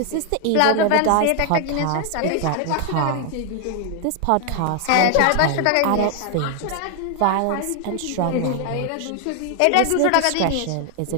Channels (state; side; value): different; both; correlation 0.00